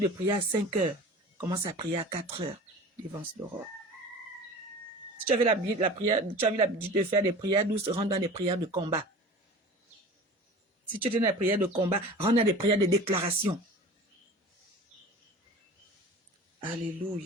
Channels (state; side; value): normal; both; correlation 0.38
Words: prier à 5 heures, commence à prier à 4 heures devant l'aurore. Si tu avais l'habitude de faire des prières douces, rentre dans des prières de combat. Si tu es dans des prières de combat, rentre dans des prières de déclaration.